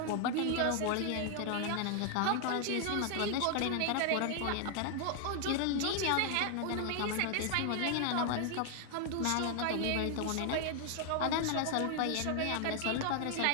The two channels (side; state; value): both; different; correlation 0.00